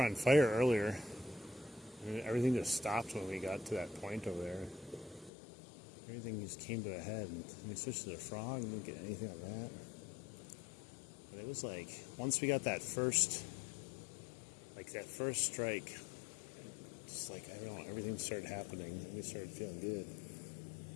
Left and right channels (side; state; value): right; drops out; at 5.3 s